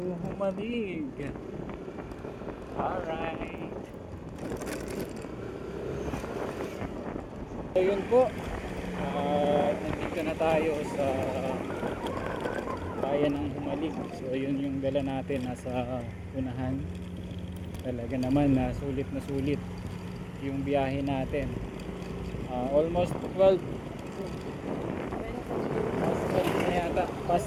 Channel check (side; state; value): both; identical; correlation 1.00